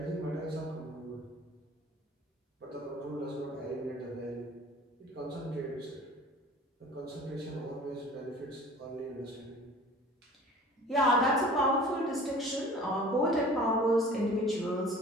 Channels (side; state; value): both; normal; correlation 0.45